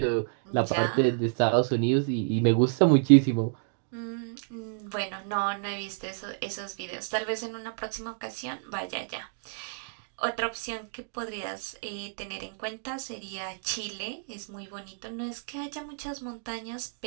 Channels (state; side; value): silent; left; digital silence